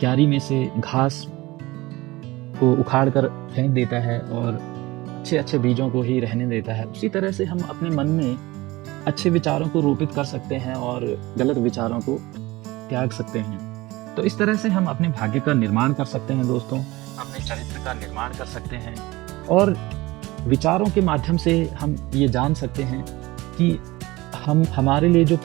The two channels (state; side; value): quieter; left; 20.3 dB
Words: में से घास को उखाड़ कर फेंक देता है और अच्छे अच्छे बीजों को ही रहने देता है, उसी तरह से हम अपने मन में अच्छे विचारों को रोपित कर सकते हैं और गलत विचारों को त्याग सकते हैं। तो इस तरह से हम अपने भाग्य का निर्माण कर सकते हैं दोस्तों, अपने चरित्र का निर्माण कर सकते हैं और विचारों के माध्यम से हम ये जान सकते हैं कि हमारे लिए जो